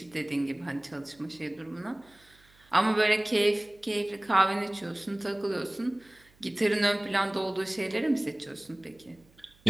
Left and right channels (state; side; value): noise; right; hum, 30 dB below the sound